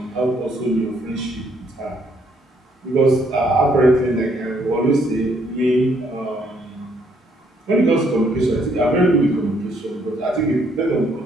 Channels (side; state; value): both; normal; correlation 0.69